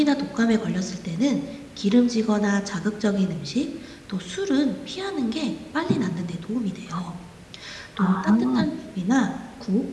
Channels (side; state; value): both; identical; correlation 1.00